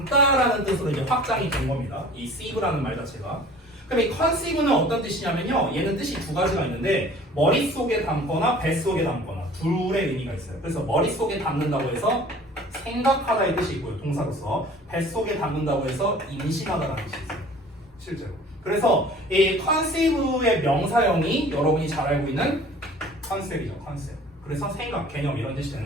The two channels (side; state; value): both; normal; correlation 0.47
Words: 뜻으로 이제 확장이 된 겁니다. 이 sieve라는 말 자체가. 그럼 이 conceive는 어떤 뜻이냐면요. 얘는 뜻이 두 가지가 있는데 머릿속에 담거나 뱃속에 담거나 둘의 의미가 있어요. 그래서 머릿속에 담는다고 해서 생각하다의 뜻이 있고요. 동사로서 뱃속에 담는다고 해서 임신하다라는 뜻이 있어요. 실제로. 그래서 이 conceive의 명사형이 여러분이 잘 알고 있는 컨셉이죠. 컨셉. 그래서 생각, 개념 이런 뜻이